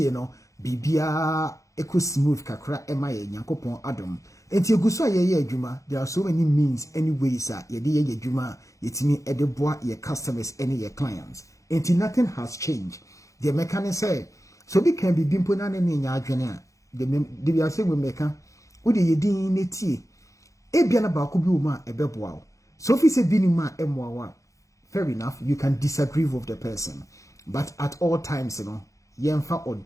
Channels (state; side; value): late; right; 0.15 ms